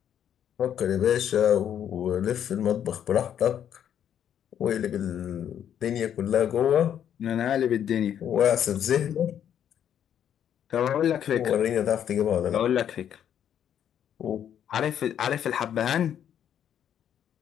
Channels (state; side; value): quieter; right; 9.5 dB